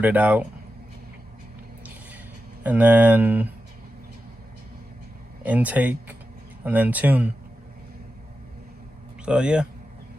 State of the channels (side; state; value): both; normal; correlation 0.91